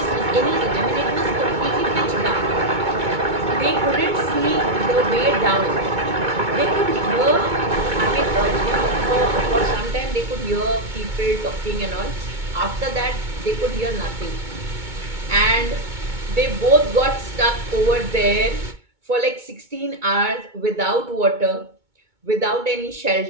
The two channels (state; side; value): late; left; 2.2 ms